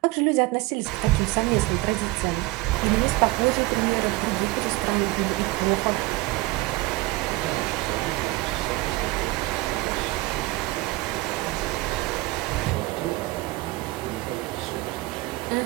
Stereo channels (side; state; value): left; quieter; 20.5 dB